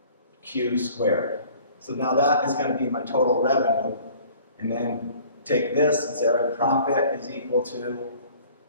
Q squared. So now that is going to be my total revenue. And then take this and say our profit is equal to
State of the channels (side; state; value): both; inverted; correlation -0.51